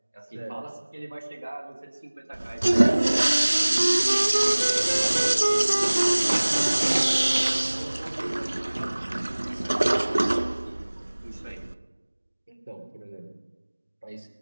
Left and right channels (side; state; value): both; inverted; correlation -1.00